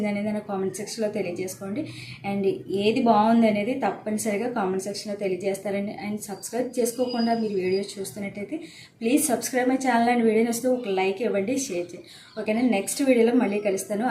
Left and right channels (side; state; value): both; identical; correlation 1.00